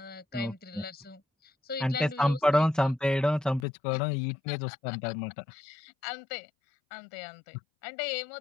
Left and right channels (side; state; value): right; drops out; at 3.7 s